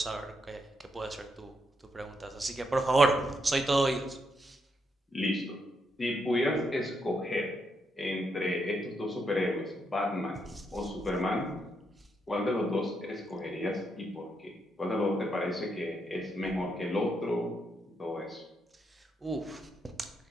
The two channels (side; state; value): both; normal; correlation 0.79